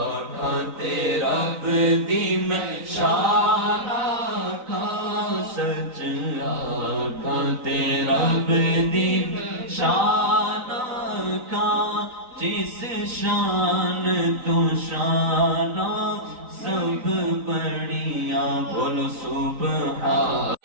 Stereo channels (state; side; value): late; left; 3.9 ms